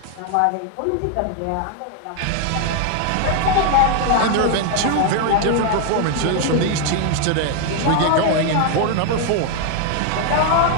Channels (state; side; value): different; both; correlation 0.00